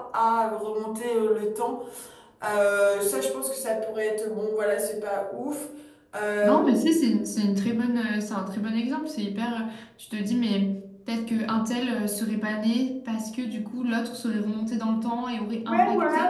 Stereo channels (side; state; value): both; identical; correlation 1.00